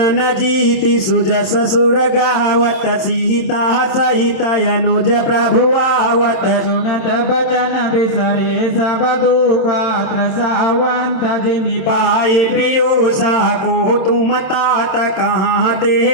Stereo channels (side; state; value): right; late; 27 ms